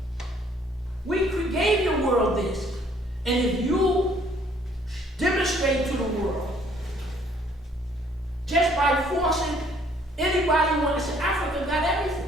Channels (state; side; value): normal; both; correlation 0.61